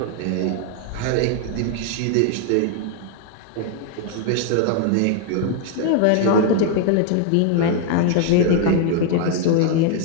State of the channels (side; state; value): both; different; correlation 0.01